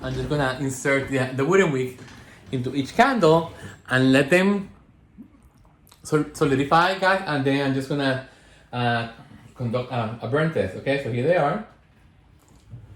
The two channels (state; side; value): identical; both; correlation 1.00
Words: just gonna insert the wooden wick into each candle and let them solidify, guys. And then I'm just gonna conduct a burn test. Okay, so here they are.